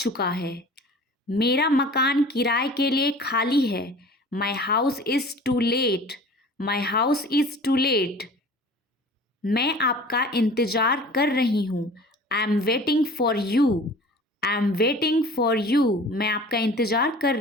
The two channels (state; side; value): normal; both; correlation 0.43